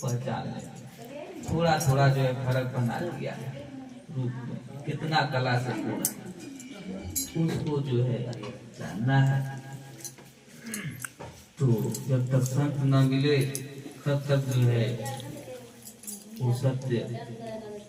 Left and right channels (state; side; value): identical; both; correlation 1.00